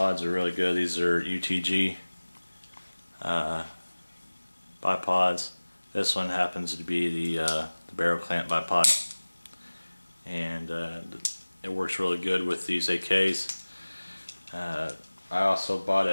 are really good. These are UTG bipods. This one happens to be the barrel clamp bipod, and it works really good with these AKs. I also bought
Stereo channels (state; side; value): inverted; both; correlation -1.00